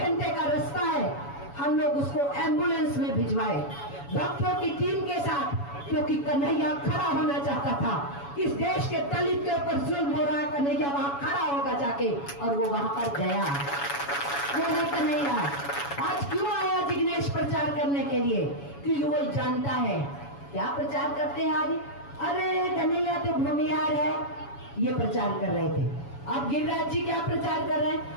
का रास्ता है, हम लोग उसको एम्बुलेंस में भिजवाए डॉक्टरों की टीम के साथ, क्योंकि कन्हैया खड़ा होना चाहता था। इस देश के दलित के ऊपर जुल्म हो रहा है, कन्हैया वहां खड़ा होगा जाके, और वो वहां पर गया। वो है कन्हैया। आज क्यों आया जिग्नेश प्रचार करने के लिए? क्योंकि वो जानता है क्या प्रचार करते हैं आज, अरे कन्हैया तो भूमिहार है, ये प्रचार कर रहे थे। अब गिरिराज जी क्या प्रचार कर रहे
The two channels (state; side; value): late; right; 7.1 ms